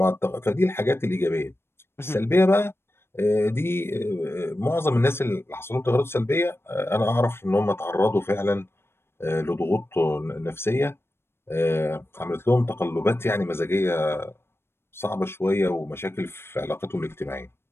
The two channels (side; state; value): right; late; 0.12 ms